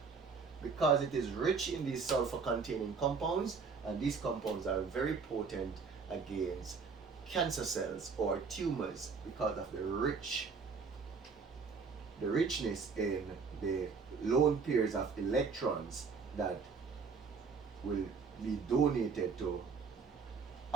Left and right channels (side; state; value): left; quieter; 5.2 dB